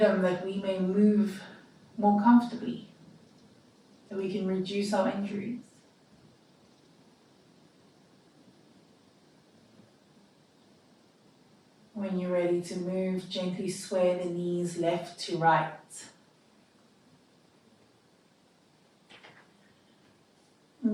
that we may move more comfortably, that we can reduce our injuries. When you're ready to move, gently sway the knees left to right.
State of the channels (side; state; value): both; identical; correlation 1.00